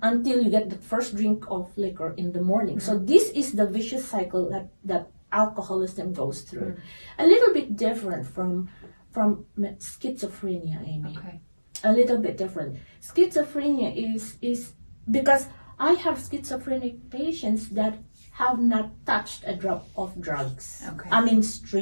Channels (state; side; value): inverted; both; correlation -1.00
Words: until you get the first drink of liquor in the morning. So this is the vicious cycle that alcoholism goes through. A little bit different from schizophrenia, Amy. Okay. A little bit different. Schizophrenia is because I have schizophrenic patients that have not touched a drop of drugs. Okay. I mean,